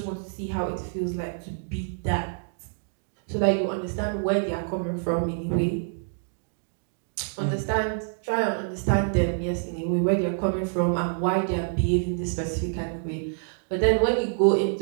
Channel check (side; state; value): left; silent; digital silence